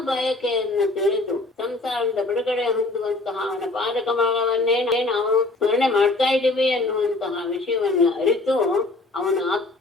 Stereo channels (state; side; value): quieter; right; 3.0 dB